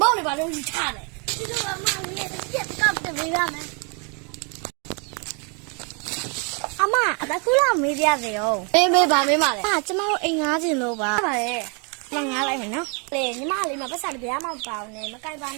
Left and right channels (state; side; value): quieter; left; 35.3 dB